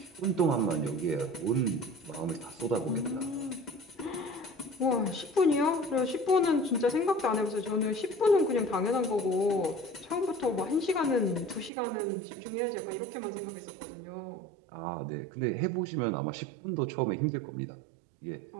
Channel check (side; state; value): left; drops out; at 11.7 s